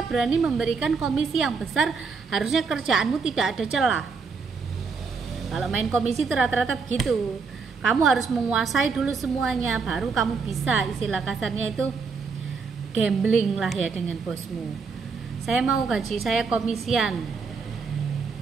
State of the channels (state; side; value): quieter; left; 5.0 dB